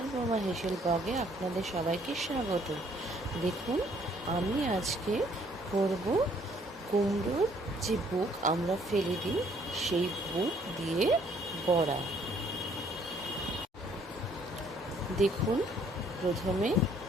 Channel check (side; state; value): both; normal; correlation 0.63